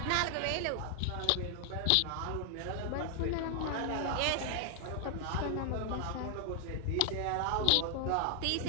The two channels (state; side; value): different; both; correlation 0.00